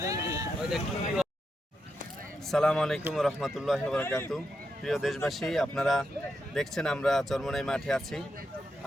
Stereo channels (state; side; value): normal; both; correlation 0.84